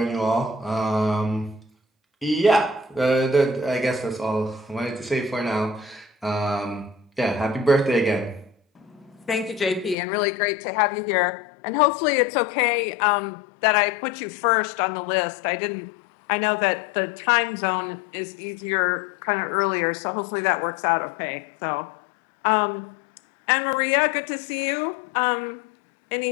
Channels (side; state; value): right; drops out; at 10.0 s